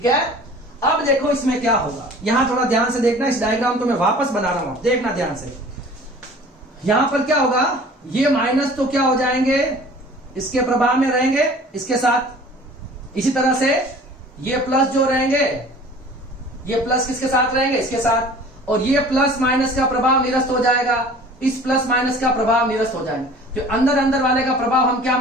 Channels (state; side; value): normal; both; correlation 0.46